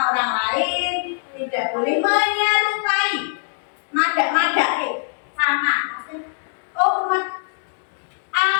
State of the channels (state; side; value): silent; right; digital silence